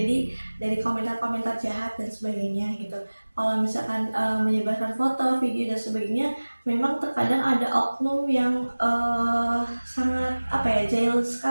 dari komentar-komentar jahat dan sebagainya gitu. Kalau misalkan menyebarkan foto, video dan sebagainya, memang terkadang ada oknum yang sangat jahil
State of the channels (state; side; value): inverted; both; correlation -1.00